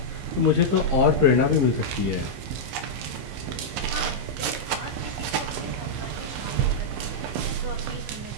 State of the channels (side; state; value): left; late; 15 ms